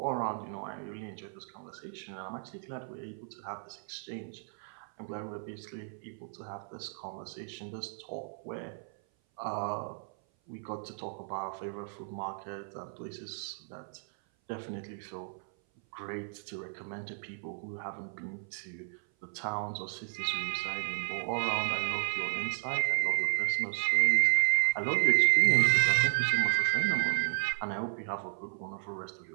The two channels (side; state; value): left; silent; 55 dB below the other